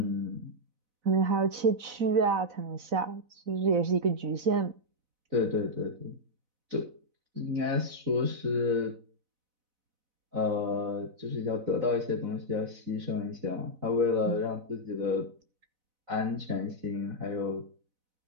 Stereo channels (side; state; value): left; late; 4.0 ms